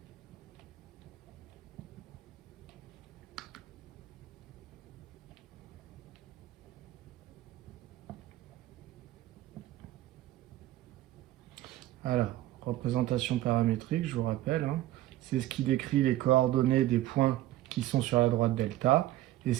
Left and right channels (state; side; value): quieter; left; 15.1 dB